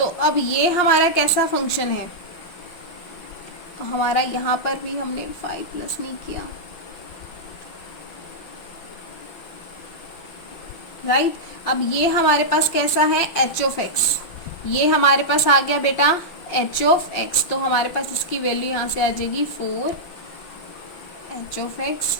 अब ये हमारा कैसा फंक्शन है, तो हमारा यहाँ पर भी हमने 5 प्लस नहीं किया, राइट। अब ये हमारे पास कैसा है, h(x), ये हमारे पास आ गया बेटा h(x), तो हमारे पास इसकी वैल्यू यहाँ से आ जाएगी 4 h(x).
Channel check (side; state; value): right; late; 5.6 ms